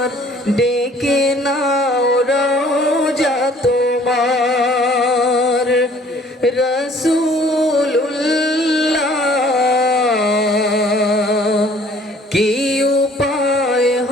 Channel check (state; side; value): normal; both; correlation 0.56